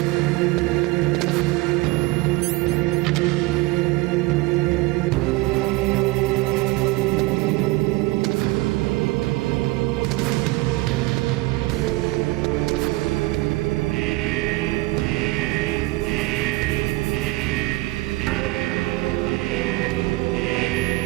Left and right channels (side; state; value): left; quieter; 21.0 dB